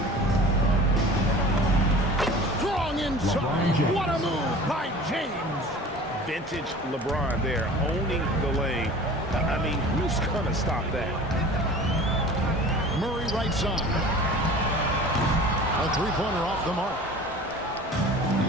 Strong inside. What a move by James. Vintage LeBron there, owning the lane. I mean, who's going to stop that? Murray right side. A three-pointer off the mark.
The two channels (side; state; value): both; normal; correlation 0.41